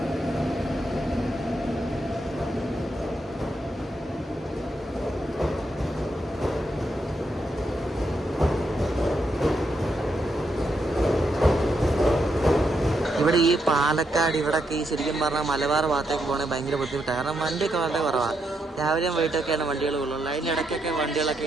ഇവിടെ ഈ പാലക്കാട് ഇവിടെയൊക്കെ ഈ ശരിക്കും പറഞ്ഞാൽ മലബാർ ഭാഗത്തേക്ക് പോകണമെങ്കിൽ ഭയങ്കര ബുദ്ധിമുട്ടാണ്. കാരണം വണ്ടിയൊക്കെ വളരെ കുറവാണ്. രാവിലെയും വൈകിട്ടൊക്കെയാണ് വണ്ടികൾ ഉള്ളൂ. അതിൻ്റെ ഇടയ്ക്കൊക്കെ വണ്ടികളൊക്കെ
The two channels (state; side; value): normal; both; correlation 0.80